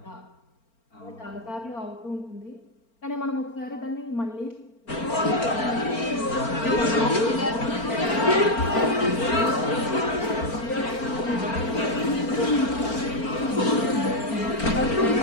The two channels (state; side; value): late; right; 4.4 ms